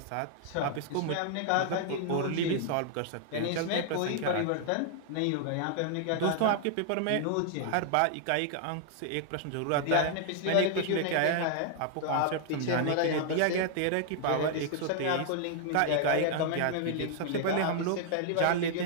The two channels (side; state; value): both; different; correlation 0.00